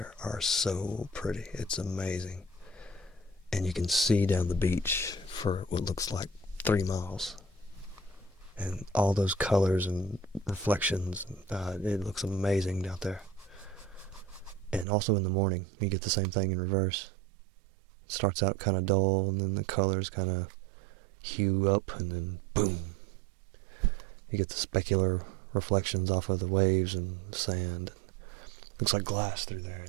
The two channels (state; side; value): drops out; left; at 14.9 s